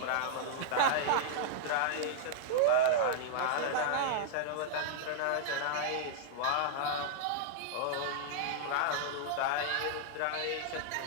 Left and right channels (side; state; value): both; different; correlation -0.01